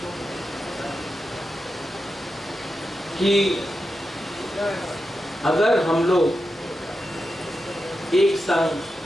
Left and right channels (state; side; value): normal; both; correlation 0.89